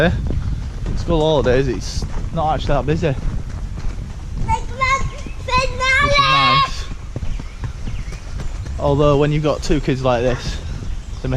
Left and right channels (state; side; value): identical; both; correlation 1.00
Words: School holidays. It's not actually that busy. Which is nice. Although when you've got two kids like this, they